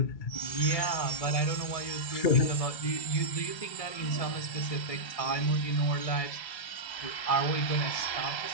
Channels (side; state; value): right; late; 1.7 ms